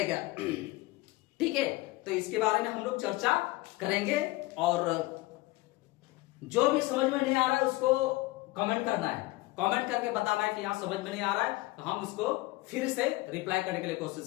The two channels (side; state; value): right; quieter; 20.3 dB